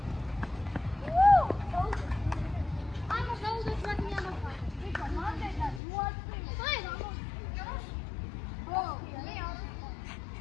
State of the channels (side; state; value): right; drops out; at 5.8 s